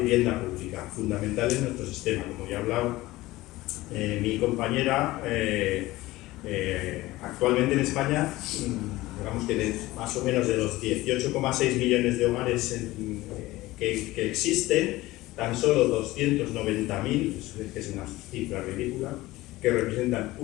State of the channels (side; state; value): right; quieter; 18.3 dB